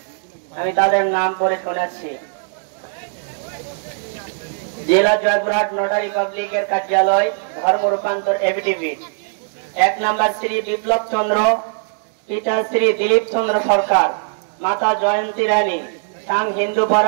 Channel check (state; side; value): silent; left; digital silence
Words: আমি তাদের নাম পড়ে শোনাচ্ছি। জেলা জয়পুরহাট নোটারি পাবলিকের কার্যালয়, ধর্ম রূপান্তর এফিডেভিট। 1 নম্বর শ্রী বিপ্লব চন্দ্র, পিতা শ্রী দিলীপ চন্দ্র সরকার, মাতা জয়ন্তী রানী, সাং